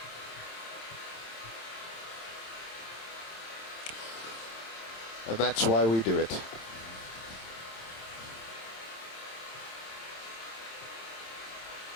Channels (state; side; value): late; right; 27 ms